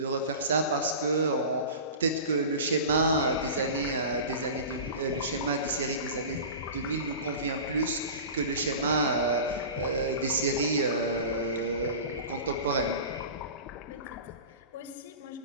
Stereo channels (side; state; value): both; inverted; correlation -0.34